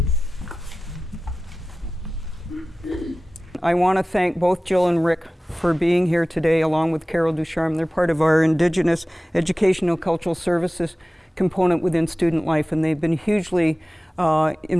I want to thank both Jill and Rick for being here today, along with Carol Ducharme. They're part of our Indigenous Educational Cultural Services component within student life, and they've been hugely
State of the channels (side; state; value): both; normal; correlation 0.96